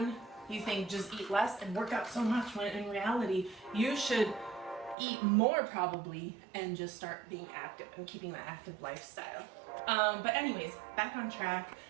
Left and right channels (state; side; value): drops out; left; at 5.0 s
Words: you think just eat less and work out so much, when in reality, you should eat more probably and just start being active and keeping that active lifestyle. But anyways, back on track.